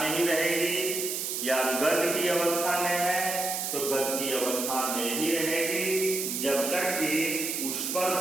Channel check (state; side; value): noise; right; hiss, 2 dB below the sound